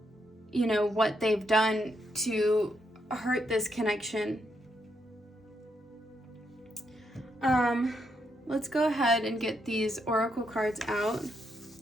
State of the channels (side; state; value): both; normal; correlation 0.79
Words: what they've done to hurt this connection. Let's go ahead and get these oracle cards out.